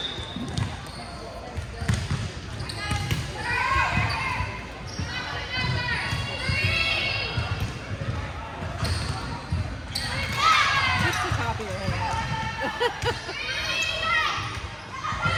Just the top of your head.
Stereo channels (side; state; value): both; identical; correlation 1.00